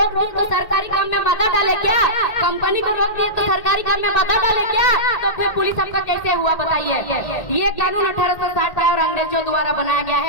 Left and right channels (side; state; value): right; late; 1.8 ms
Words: दिए तो सरकारी काम में बाधा डाले क्या? कंपनी को रोक दिए तो सरकारी काम में बाधा डाले क्या? तो फिर पुलिस आपका कैसे हुआ बताइए? ये कानून 1860 का और अंग्रेजों द्वारा बनाया गया